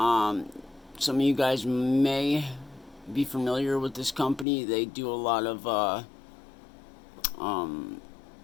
of you guys may be familiar with this company. They do a lot of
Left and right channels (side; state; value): right; drops out; at 4.5 s